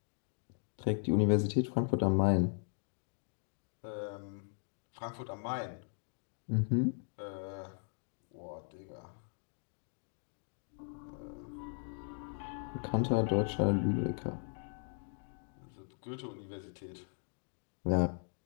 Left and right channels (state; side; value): silent; right; 52 dB below the other